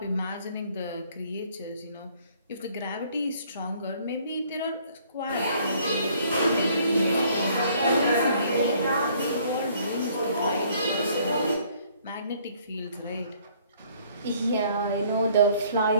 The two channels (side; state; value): both; inverted; correlation -0.61